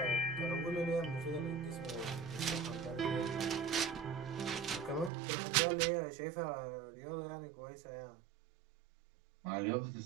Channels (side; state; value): left; drops out; at 5.1 s